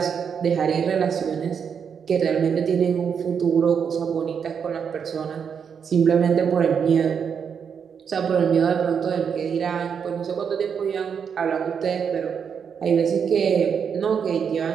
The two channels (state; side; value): quieter; left; 7.0 dB